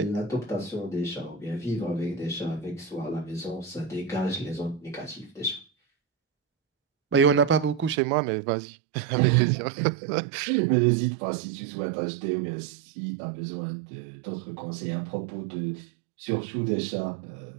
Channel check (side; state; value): left; drops out; at 8.0 s